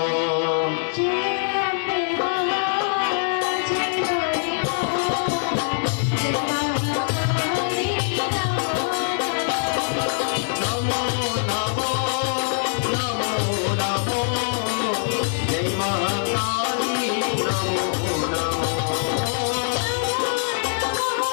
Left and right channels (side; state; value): right; silent; digital silence